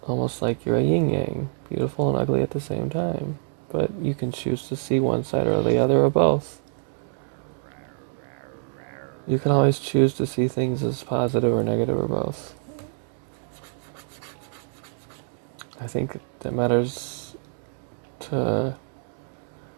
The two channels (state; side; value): silent; left; digital silence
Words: Almost like you're a yin-yang, beautiful and ugly at the same time. But you can choose to see one side or the other or both. You can always choose to see things as positive or negative or both. I think that matters to